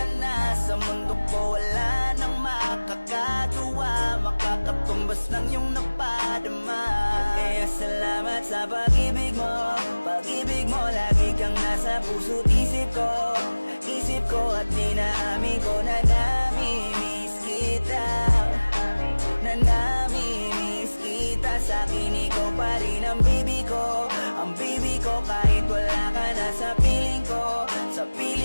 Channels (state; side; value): inverted; both; correlation -1.00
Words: na. Sa mundo ko wala nang makakagawa, makakatumbas ng iyong napadama. Kaya salamat sa pag-ibig mo, pag-ibig mo. Lagi kang nasa puso't isip ko at dinaamin ko na namimiss kita, na namimiss kita. Sa'kin ikaw pa rin ang baby ko, ang baby ko. Kahit wala ka na sa piling ko, sa